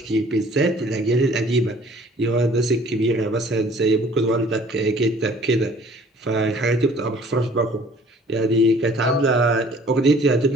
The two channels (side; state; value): both; normal; correlation 0.54